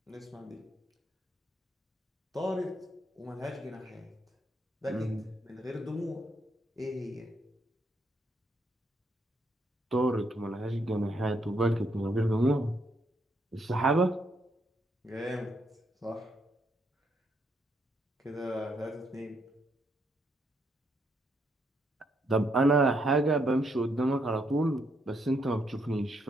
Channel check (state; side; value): normal; both; correlation 0.75